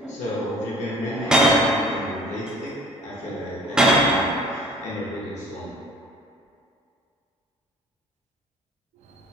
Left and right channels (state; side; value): normal; both; correlation 0.49